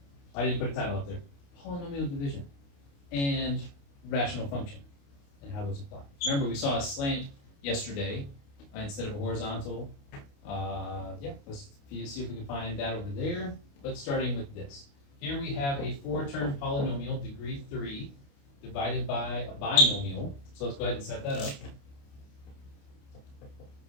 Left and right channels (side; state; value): right; late; 29 ms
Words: I didn't put a title up there. Polynomial division and rational function and how those apply. Remember, we saw a slant yesterday instead of a horizontal. Yeah, let's see if we can find that over there. But starting with this. Here we have a 4-term polynomial, degree 3, divided by a binomial. So let's go ahead and set that up.